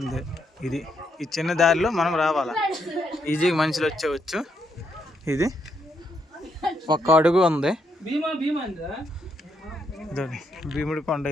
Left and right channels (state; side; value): normal; both; correlation 0.77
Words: ఈ చిన్న దారిలో మనం రావాలా. ఈజీగా మనుషులు వచ్చేవచ్చు. ఇది ఒక్క అడుగు ఉంది. భీముడి కొండ